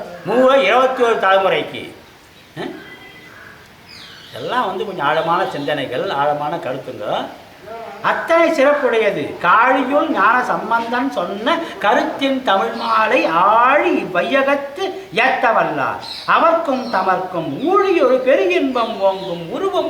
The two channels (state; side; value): identical; both; correlation 1.00